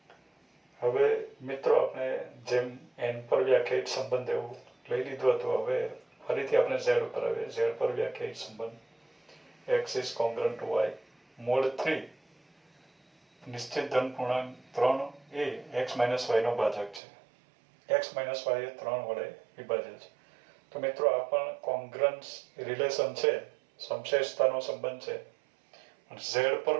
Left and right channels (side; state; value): left; drops out; at 17.0 s